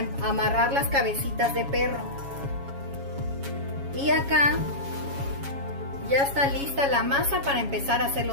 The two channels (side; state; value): left; late; 7.2 ms